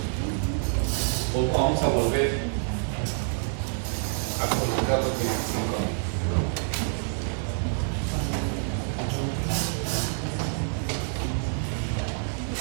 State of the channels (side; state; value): left; silent; digital silence